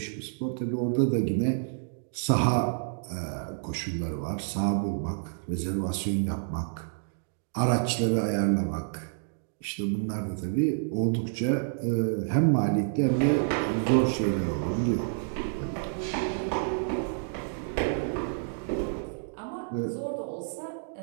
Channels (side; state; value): left; silent; digital silence